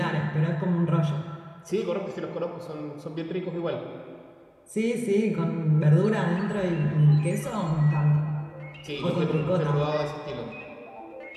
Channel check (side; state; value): both; identical; correlation 1.00